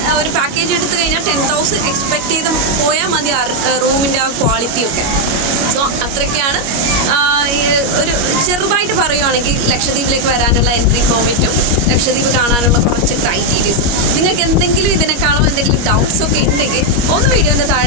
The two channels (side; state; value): left; late; 25 ms